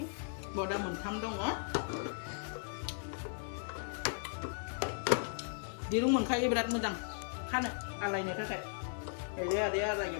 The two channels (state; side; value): silent; right; digital silence